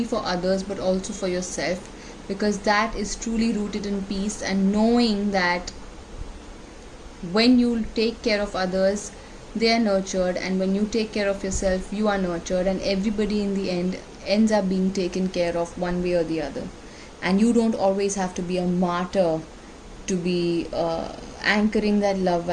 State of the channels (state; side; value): identical; both; correlation 1.00